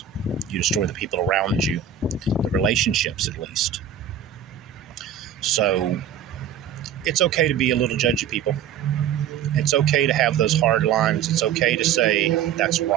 You destroy the people around you, the relationships at least. So it's okay to be a little judgy, people. It's okay to have those hard lines. It's okay to say that's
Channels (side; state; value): left; quieter; 8.8 dB